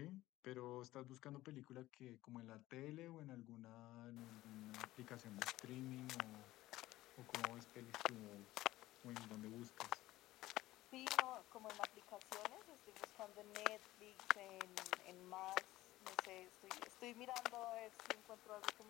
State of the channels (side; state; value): right; quieter; 16.7 dB